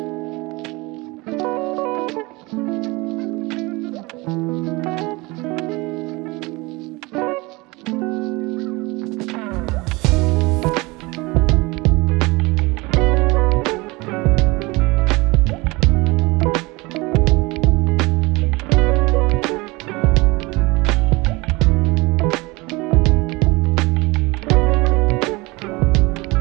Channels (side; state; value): left; quieter; 23.9 dB